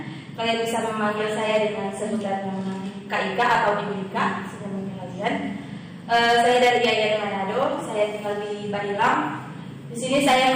Kalian bisa memanggil saya dengan sebutan Kak Ika atau Ibu Ika, sebenarnya kalian. Saya dari Yayasan Manado. Saya tinggal di Badilang. Di sini saya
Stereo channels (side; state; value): both; identical; correlation 1.00